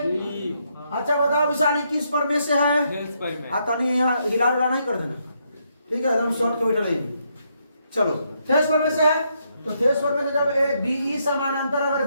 अच्छा बताओ विशाली किस पर में से है, तनी यहाँ हिला डुला नहीं कर देना, ठीक है, एकदम शॉर्ट के बैठे रहेंगे। चलो थेस पर में से है, तो थेस पर में से जब ए बीई समानांतर अगर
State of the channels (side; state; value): both; inverted; correlation -0.77